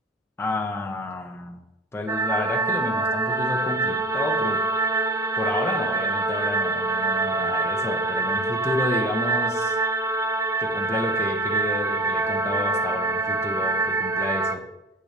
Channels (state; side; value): normal; both; correlation 0.36